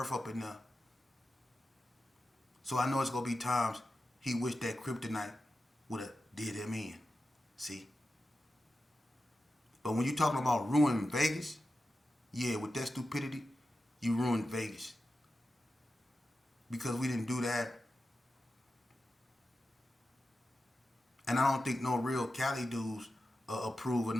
up in there. So I know it's gonna be times he wished that kryptonite would have did him in. See? But when you're talking about ruining Vegas, yeah, with that stupidity, you ruined Vegas. Because we didn't do that. And I don't think no real Cali dudes approve of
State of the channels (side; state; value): both; normal; correlation 0.92